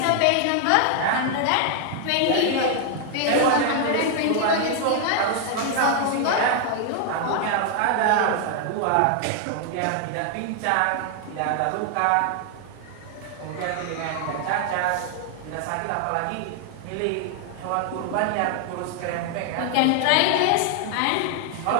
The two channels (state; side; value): different; both; correlation 0.00